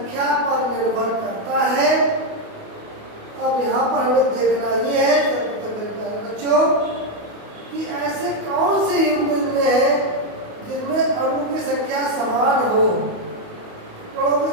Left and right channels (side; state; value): left; late; 28 ms